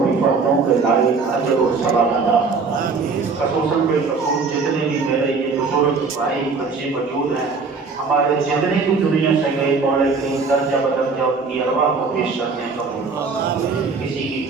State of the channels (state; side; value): quieter; left; 4.6 dB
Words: حفاظتوں کے لائق اجر و ثواب عطا خصوصاً بالخصوص جتنے بھی میرے یہ بزرگ بھائی بچے موجود ہیں ہمارے جتنے بھی دنیا سے گئے مولا کریم درجہ بدرجہ ان کی ارواح کو پیش کرتے ہیں قبول کسی کی